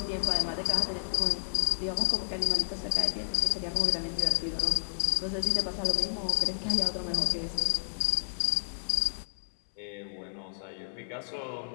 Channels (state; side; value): silent; right; digital silence